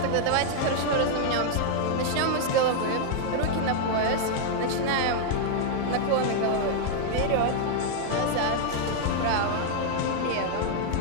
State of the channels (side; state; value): both; different; correlation 0.00